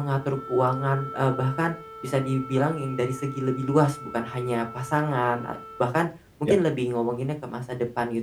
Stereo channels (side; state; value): both; identical; correlation 1.00